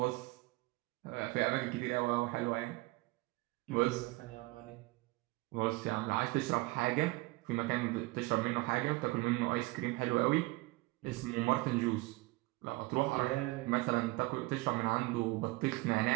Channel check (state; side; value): quieter; left; 21.9 dB